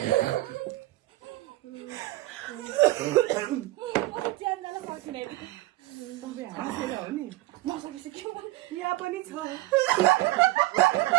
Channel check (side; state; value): left; quieter; 18.2 dB